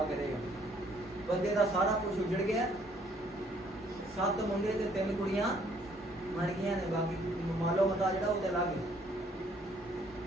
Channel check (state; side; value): normal; both; correlation 0.64